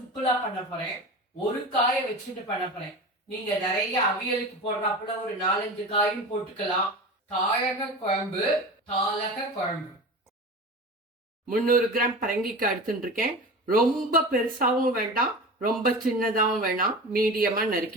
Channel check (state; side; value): normal; both; correlation 0.31